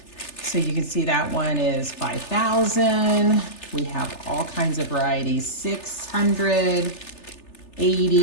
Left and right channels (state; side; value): late; right; 3.3 ms